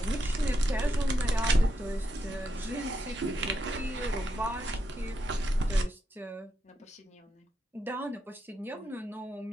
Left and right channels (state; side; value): normal; both; correlation 0.83